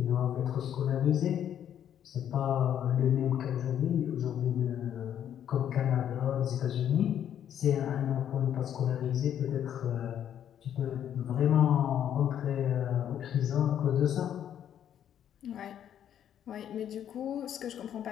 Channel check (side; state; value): right; quieter; 9.9 dB